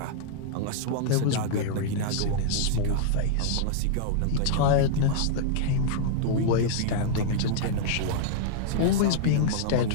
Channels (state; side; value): different; both; correlation -0.01